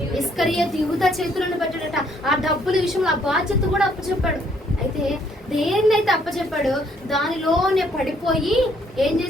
ఇస్కరియోతు యూదా చేతులను పెట్టాడట. ఆ డబ్బుల విషయంలో ఆ బాధ్యత కూడా అప్పచెప్పాడు. అయితే దేన్నైతే అప్పచెప్పాడు దానిలోనే పడిపోయి ఏం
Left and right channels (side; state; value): both; normal; correlation 0.67